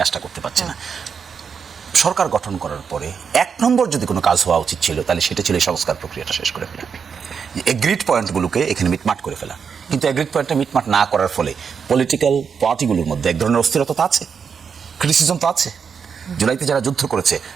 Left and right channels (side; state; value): left; quieter; 6.4 dB